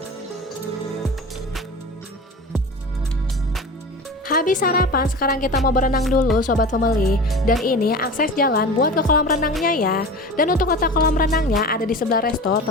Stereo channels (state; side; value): normal; both; correlation 0.33